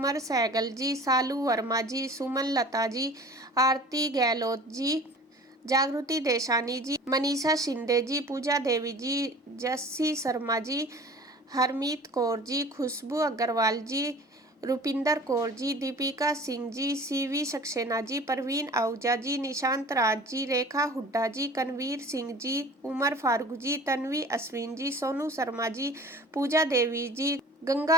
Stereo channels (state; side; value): normal; both; correlation 0.43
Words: सहगल जी, सालू वर्मा जी, सुमन लता जी, आरती गहलोत जी, जागृति देशानी जी, मनीषा शिंदे जी, पूजा देवी जी, जस्सी शर्मा जी, हरमीत कौर जी, खुशबू अग्रवाल जी, रुपिंदर कौर जी, दीपिका सिंह जी, सीवी सक्सेना जी, परवीन आहूजा जी, निशांत राज जी, रेखा हुड्डा जी, कनवीर सिंह जी, उमर फारूक जी, तन्वी अश्विन जी, सोनू शर्मा जी, पूजा देवी जी,